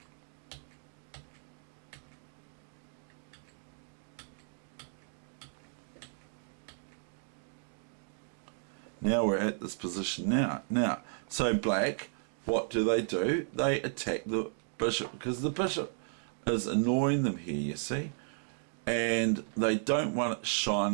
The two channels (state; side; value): silent; left; digital silence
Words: Now we're at this position now. Now, so black, what do? They attack the bishop, because the bishop is annoying them here, you see. And they don't want it